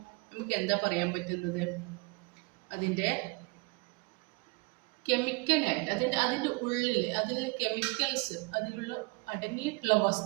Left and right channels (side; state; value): left; quieter; 28.0 dB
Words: നമുക്ക് എന്താ പറയാൻ പറ്റുന്നത്? അതിൻ്റെ കെമിക്കലായിട്ട് അതിൻ്റെ ഉള്ളിൽ അതിലെ കെമിക്കൽസ്, അതിലുള്ള അടങ്ങിയിട്ടുള്ള